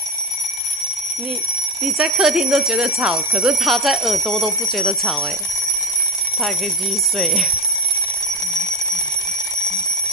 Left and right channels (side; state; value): both; normal; correlation 0.21